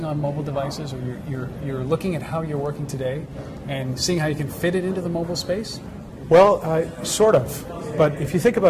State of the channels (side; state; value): both; identical; correlation 1.00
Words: on mobile devices, or you're looking at how you're working today and seeing how you can fit it into the mobile space? Well, sort of. But if you think